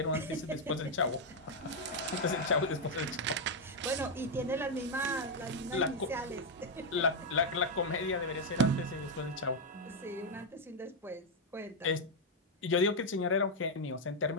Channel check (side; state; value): both; normal; correlation 0.01